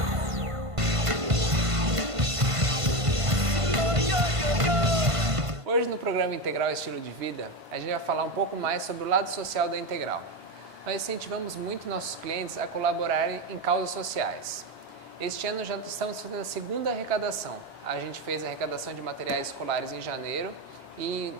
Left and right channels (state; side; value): late; left; 1.5 ms